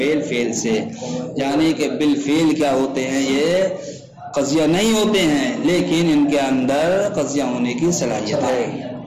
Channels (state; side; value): identical; both; correlation 1.00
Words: فعل سے، یعنی کہ بالفعل کیا ہوتے ہیں؟ یہ قضیہ نہیں ہوتے ہیں لیکن ان کے اندر قضیہ ہونے کی صلاحیت ہے۔